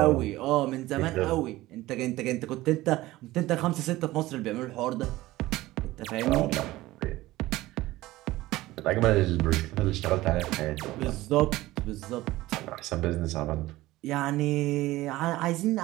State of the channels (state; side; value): quieter; left; 17.7 dB